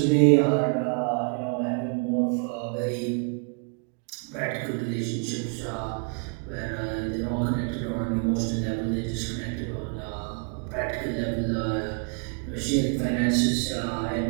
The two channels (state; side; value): quieter; left; 38.0 dB